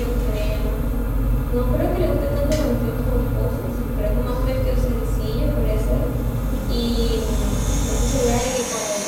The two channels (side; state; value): both; identical; correlation 1.00